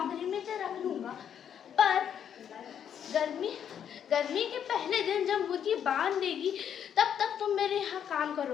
में तो रख लूंगा, पर गर्मी के पहले दिन जब मुर्गी बांध देगी तब तक तुम मेरे यहाँ काम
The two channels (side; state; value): right; quieter; 8.8 dB